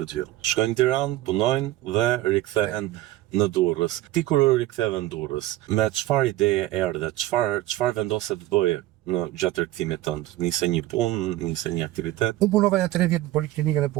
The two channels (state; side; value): quieter; left; 15.7 dB